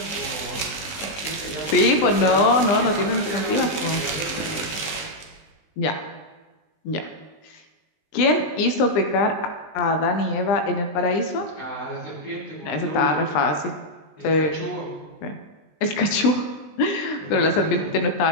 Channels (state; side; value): late; right; 20 ms